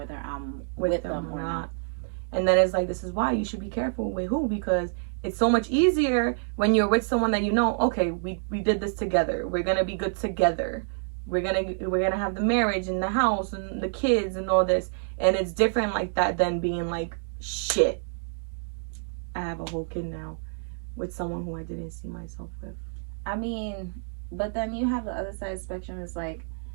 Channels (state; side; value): silent; left; digital silence